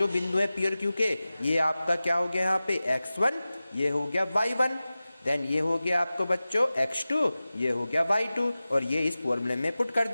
बिंदु है P और Q के, ये आपका क्या हो गया यहाँ पे x1, ये हो गया y1, देन ये हो गया आपको बच्चों x2, ये हो गया y2, और ये इस फॉर्मूले में पुट कर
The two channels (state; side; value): inverted; both; correlation -0.96